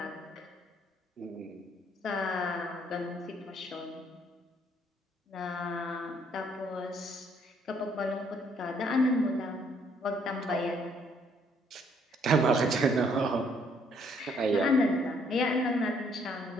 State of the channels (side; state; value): both; normal; correlation 0.66